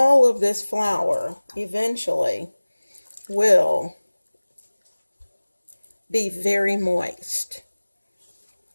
of this flour eventually will be very moist.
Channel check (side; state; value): both; inverted; correlation -1.00